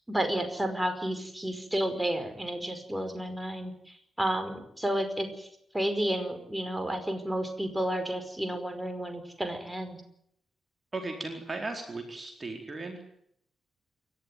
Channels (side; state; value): both; normal; correlation 0.92